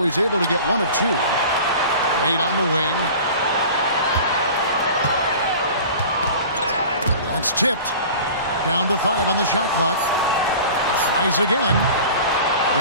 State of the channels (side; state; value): both; inverted; correlation -0.40